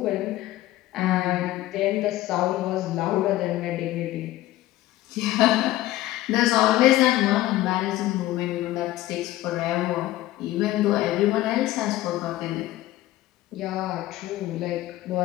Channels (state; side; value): quieter; right; 15.6 dB